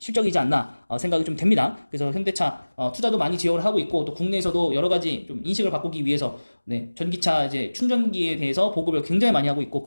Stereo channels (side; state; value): both; inverted; correlation -1.00